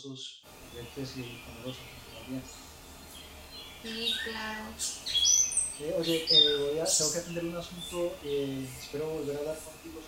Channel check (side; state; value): both; identical; correlation 1.00